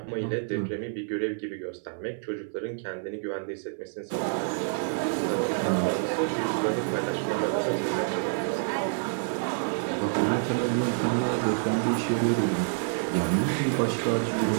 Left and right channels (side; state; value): left; silent; 59 dB below the other